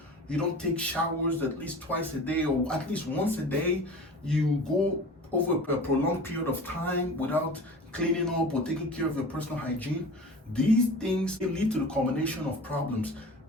you don't take showers at least twice a day or at least once a day, you go over a prolonged period of time without cleaning up or taking care of your personal hygiene, these things lead to the combination of problems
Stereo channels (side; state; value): both; normal; correlation 0.38